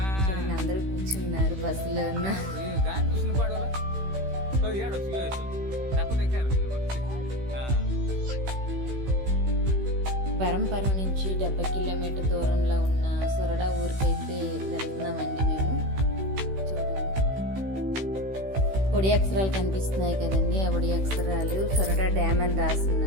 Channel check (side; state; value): left; late; 16 ms